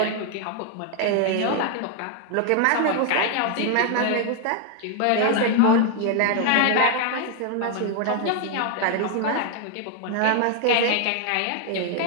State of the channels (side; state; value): both; different; correlation 0.00